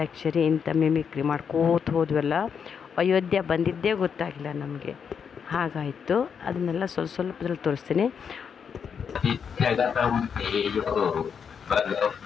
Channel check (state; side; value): quieter; right; 6.9 dB